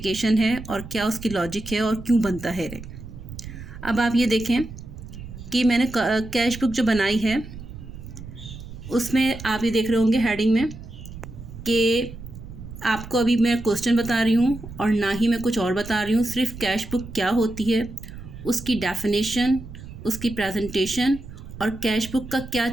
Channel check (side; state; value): right; noise; rumble, 13 dB below the sound